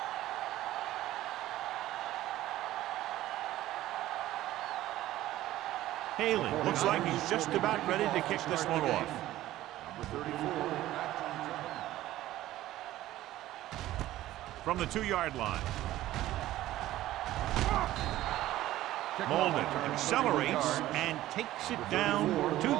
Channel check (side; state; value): left; quieter; 14.9 dB